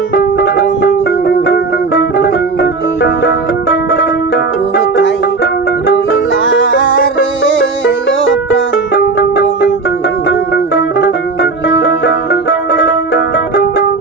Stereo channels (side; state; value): left; quieter; 4.0 dB